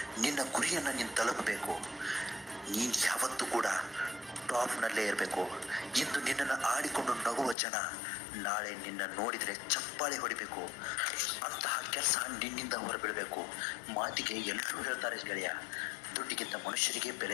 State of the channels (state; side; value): drops out; right; at 7.6 s